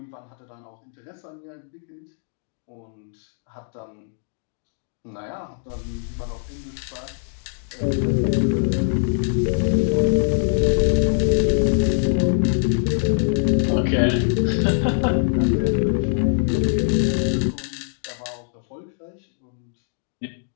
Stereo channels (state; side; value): silent; right; digital silence